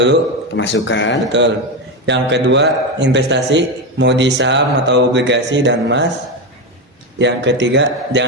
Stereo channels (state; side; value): normal; both; correlation 0.13